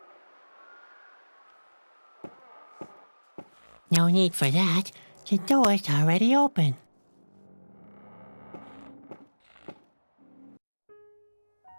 No need for that. The door's already open.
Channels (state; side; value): inverted; both; correlation -1.00